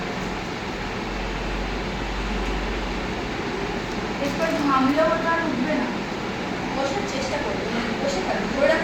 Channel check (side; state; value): both; identical; correlation 1.00